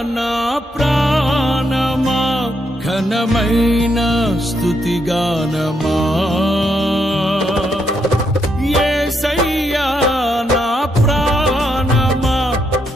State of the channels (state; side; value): normal; both; correlation 0.78